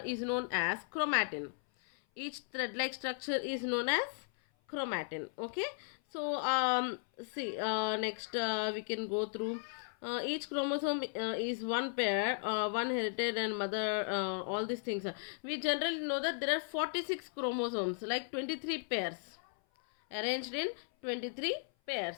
is known as chromatin. Each thread-like structure is known as chromatin. Okay, so see, next we can go through. Each chromosome is one pair, one heritage and mother, all these things. We generally know that there are 46 chromosomes, like 23 pairs, arranged in 23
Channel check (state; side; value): silent; right; 54 dB below the other